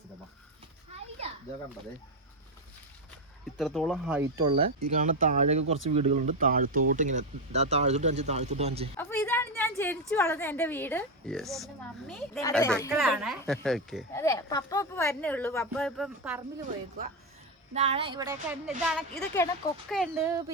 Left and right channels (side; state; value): both; normal; correlation 0.09